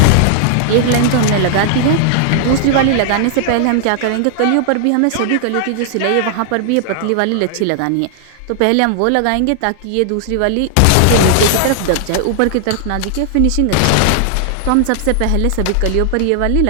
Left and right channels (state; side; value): different; both; correlation 0.00